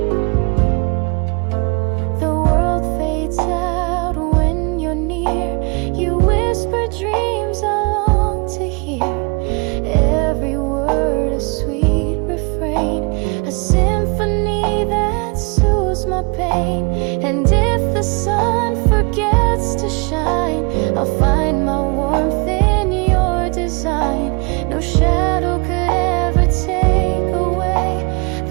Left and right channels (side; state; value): left; quieter; 31.0 dB